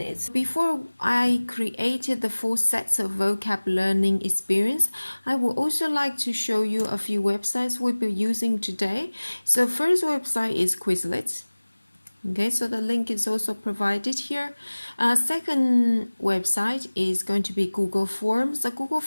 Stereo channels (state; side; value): inverted; both; correlation -1.00